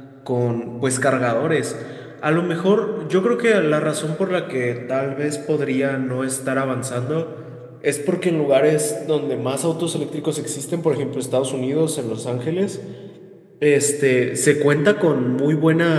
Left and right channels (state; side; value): identical; both; correlation 1.00